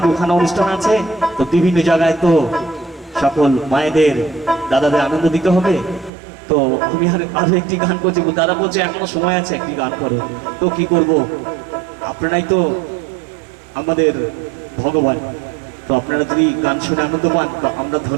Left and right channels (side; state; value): left; drops out; at 6.1 s